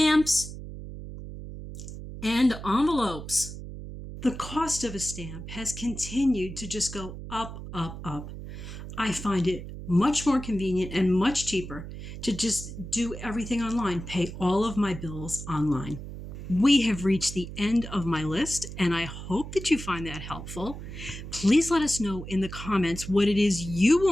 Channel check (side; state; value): right; noise; hum, 10 dB below the sound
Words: and envelopes. The cost of a stamp has continued to just go up, up, up. I find it much more convenient and much cheaper to just do everything online, pay all of my bills online. We have reached the end of my list, and I hope that you find that helpful. Please let us know in the comments what it is you